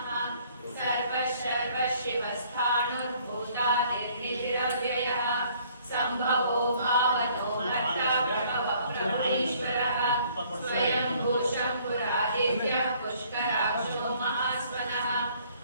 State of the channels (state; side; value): inverted; both; correlation -0.60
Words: सर्वशिवस्थाणुर्भूतानिर्निधिरव्ययः सम्भवो भावनो भर्ता प्रभवप्रभुरीश्वरः स्वयंभू शम्भुरादित्यः पुष्कराक्षो महास्वनः